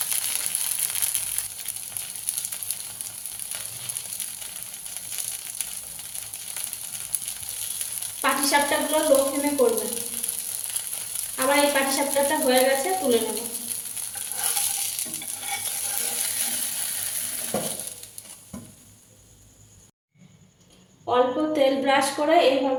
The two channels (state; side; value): identical; both; correlation 1.00